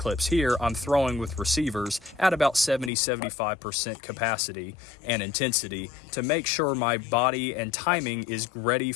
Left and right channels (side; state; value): right; drops out; at 2.9 s